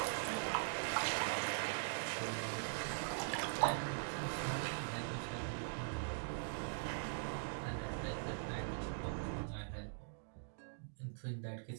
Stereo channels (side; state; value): left; silent; digital silence